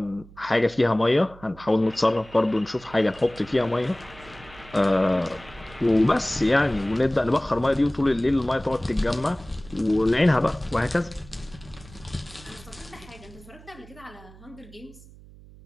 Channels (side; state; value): right; noise; hum, 21 dB below the sound